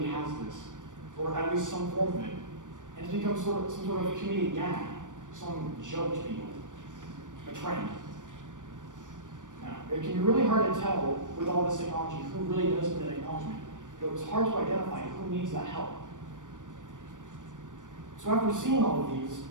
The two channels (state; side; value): late; left; 0.87 ms